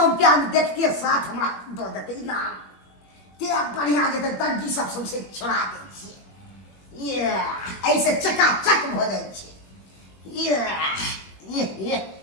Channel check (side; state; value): right; late; 21 ms